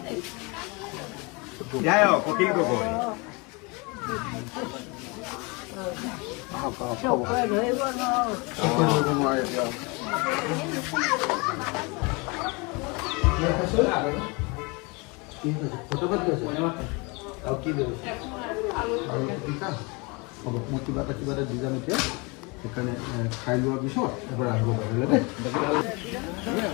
কপিল গগৈ হ'ব, মই কিবা এটা দি যাম এতিয়া। সেইকাৰণে খাই লোৱাৰ পিছত এবাৰ আহিব পাৰিলে দেই।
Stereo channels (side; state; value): right; quieter; 28.4 dB